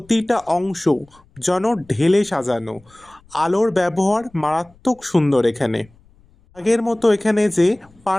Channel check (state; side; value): noise; left; rumble, 30 dB below the sound